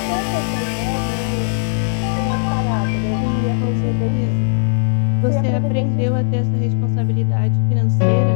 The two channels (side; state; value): right; silent; 65 dB below the other